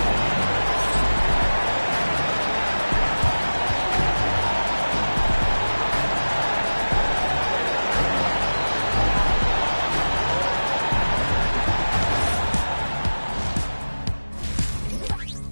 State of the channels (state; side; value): inverted; both; correlation -1.00